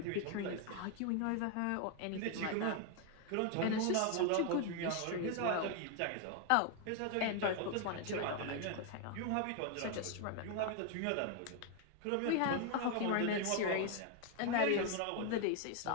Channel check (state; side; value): different; both; correlation 0.01